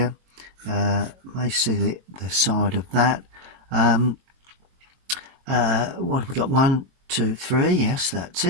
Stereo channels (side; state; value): left; late; 22 ms